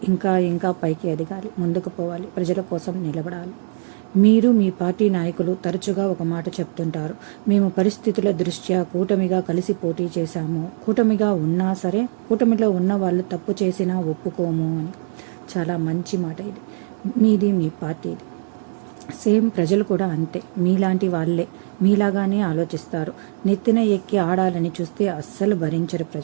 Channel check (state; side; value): silent; left; 65 dB below the other